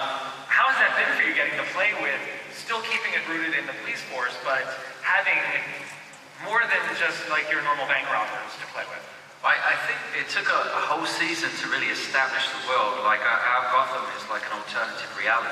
has that been for you, getting to play with, still keeping it rooted in the police force, but having more than just like your normal bank robbers to play with? I think it took a whole season to really establish the world. Like our Gotham is like an alternative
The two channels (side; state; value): both; identical; correlation 1.00